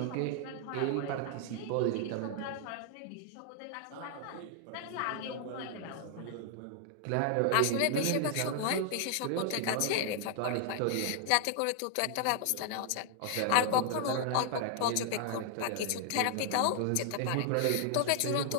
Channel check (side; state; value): both; different; correlation 0.00